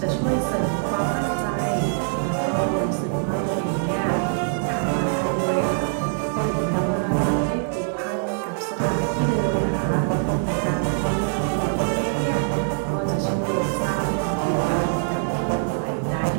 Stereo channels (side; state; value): left; silent; 59 dB below the other